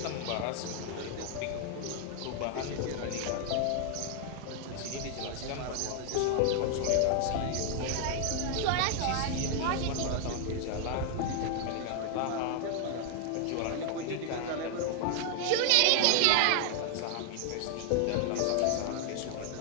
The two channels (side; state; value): both; different; correlation 0.00